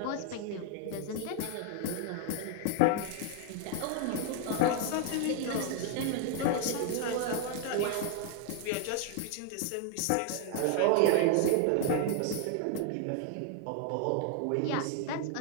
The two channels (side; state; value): both; different; correlation 0.00